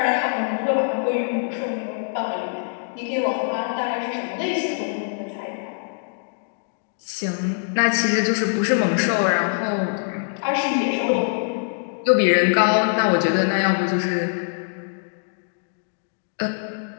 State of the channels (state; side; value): silent; right; digital silence